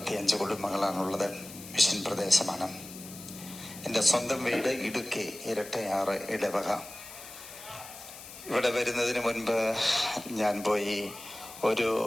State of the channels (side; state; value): left; noise; hiss, 14 dB below the sound